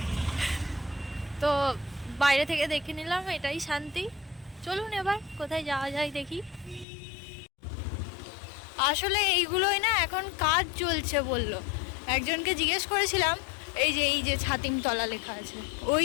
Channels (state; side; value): drops out; right; at 6.9 s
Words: তো বাইরে থেকে দেখে নিলাম, এটাই শান্তি। চলুন এবার কোথায় যাওয়া যায় দেখি। আসলে এইগুলোই না এখন কাজ চলছে বললো, একজনকে জিজ্ঞেস করেছিলাম। এই যে ছাতিমতলা লেখা আছে,